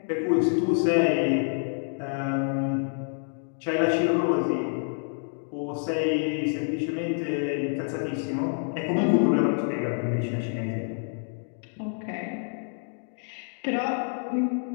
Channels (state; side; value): silent; right; 60 dB below the other